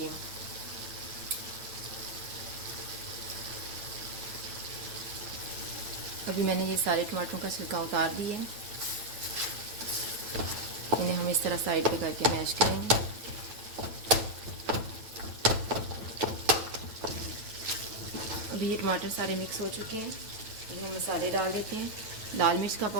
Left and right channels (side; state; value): left; late; 9.1 ms